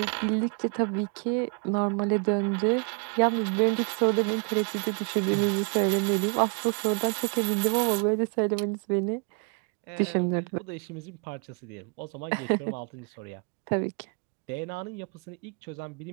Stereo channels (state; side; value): quieter; left; 37.4 dB